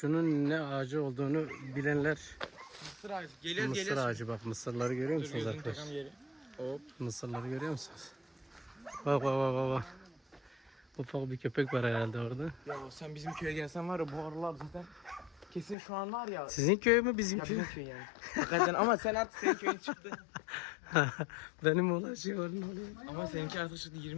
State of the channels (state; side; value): drops out; right; at 15.8 s